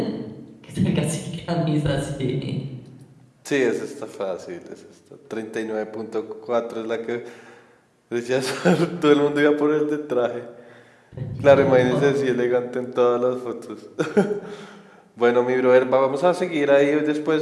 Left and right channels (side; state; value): both; identical; correlation 1.00